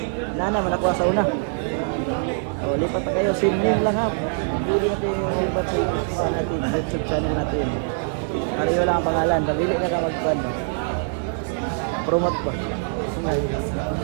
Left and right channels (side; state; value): left; silent; digital silence